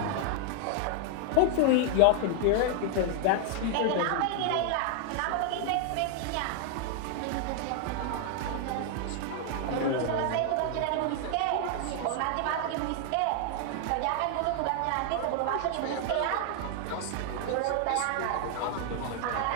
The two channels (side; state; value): both; different; correlation 0.00